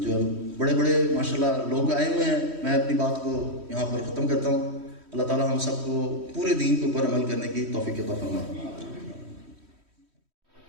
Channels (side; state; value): left; late; 3.1 ms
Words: بڑے بڑے ماشاءاللہ لوگ آئے ہوئے ہیں، میں اپنی بات کو یہاں پر ختم کرتا ہوں۔ اللہ تعالیٰ ہم سب کو پورے دین کے اوپر عمل کرنے کی توفیق عطا فرمائے۔